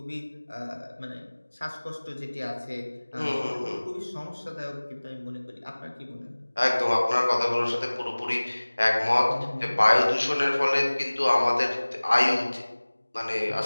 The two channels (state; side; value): inverted; both; correlation -1.00